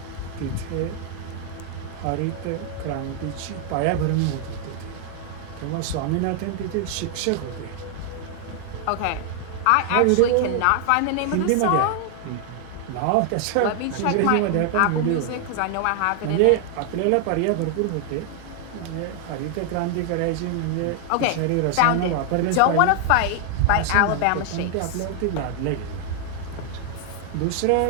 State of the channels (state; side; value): different; both; correlation 0.00